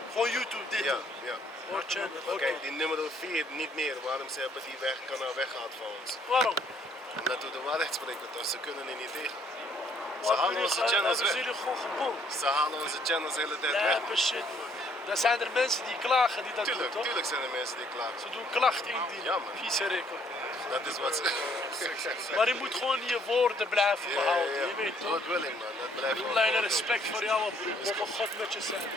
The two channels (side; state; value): both; normal; correlation 0.65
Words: Gewoon YouTube dit. Ja. Oh, channel. Oké. Kijk, die nummer 4 niet meer. Waarom ze hebben die kanaal weggehaald van ons? Waarom? Omdat we de waarheid spreken, dus ze kunnen er niet tegen. Ze Waarom halen onze channels hebben ze weg. jullie gewoon gebonden? Ze halen onze channels de hele tijd weg. Lijpe shit man. Dan zijn er mensen die klagen die dat doen toch? Tuurlijk zijn er mensen die klagen. Ze doen klachten indienen. Ja, man. Vieze record. Dat is wat ze... Maar je moet gewoon je woorden blijven behouden. Je weet toch? Dat wil ik man, dat blijft gewoon. Alleen respect voor jou, broer. Mogen God met je zijn.